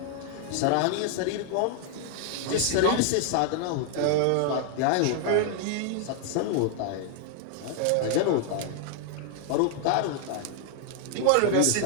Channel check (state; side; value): different; both; correlation 0.00